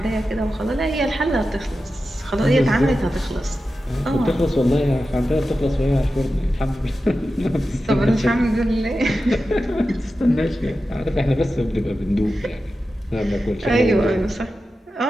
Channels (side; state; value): both; normal; correlation 0.92